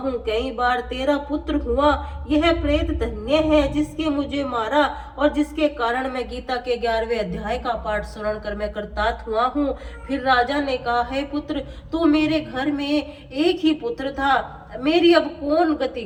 कई बार तेरा पुत्र हुआ। यह प्रेत धन्य है जिसके मुझे मारा और जिसके कारण मैं गीता के 11वें अध्याय का पाठ सुन कर मैं कृतार्थ हुआ हूँ। फिर राजा ने कहा, हे पुत्र, तू मेरे घर में एक ही पुत्र था, मेरी अब कौन गति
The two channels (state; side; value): identical; both; correlation 1.00